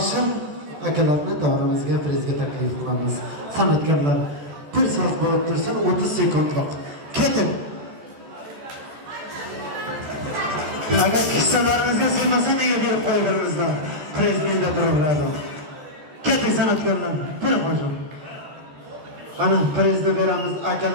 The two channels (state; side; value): late; left; 14 ms